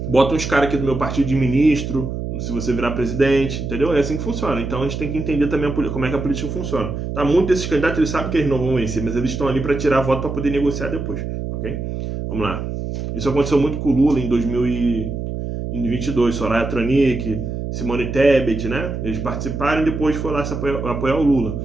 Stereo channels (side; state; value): right; noise; hum, 5 dB below the sound